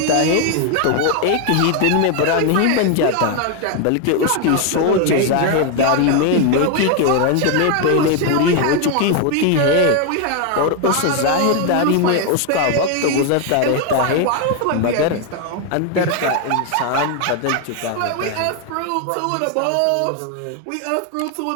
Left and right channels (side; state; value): both; different; correlation 0.01